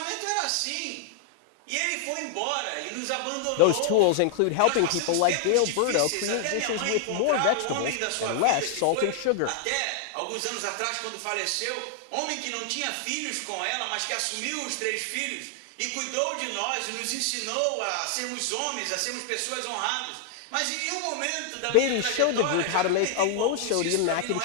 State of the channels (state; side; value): different; both; correlation 0.00